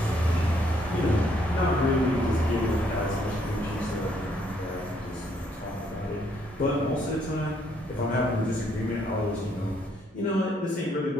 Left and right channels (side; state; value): both; normal; correlation 0.69